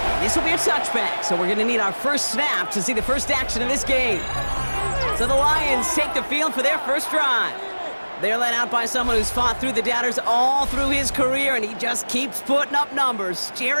This will be a touchback, so we're going to need our first snap to see the first action of this game. So the Lions take the field for their first drive. They're led out by someone who's fought through the doubters all through his career, and he just keeps putting up numbers.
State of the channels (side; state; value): both; inverted; correlation -1.00